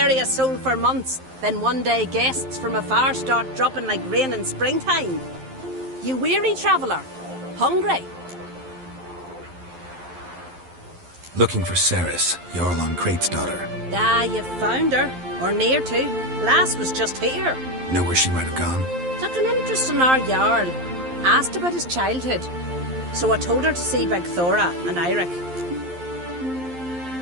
a soul for months. Then one day guests from afar start dropping like rain in springtime. You weary traveller? Hungry? Looking for Ceres, Jarl on Crate's daughter. Ah, you've found her. Or near to. Lass was just here. Know where she might have gone? Took an interest in our Jarl. Asked about his childhood. So I told her to see Big Thora and Eirik.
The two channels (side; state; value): left; late; 11 ms